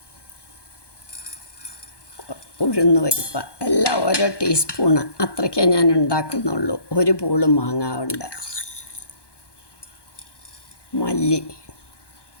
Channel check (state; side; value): late; right; 1.2 ms